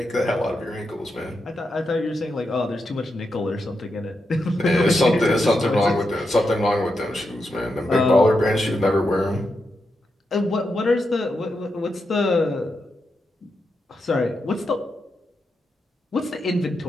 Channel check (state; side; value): normal; both; correlation 0.86